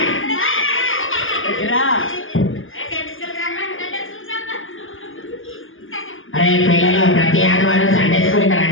అరే పిల్లలు, ప్రతి ఆదివారం సండే స్కూల్కి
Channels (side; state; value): right; late; 0.58 ms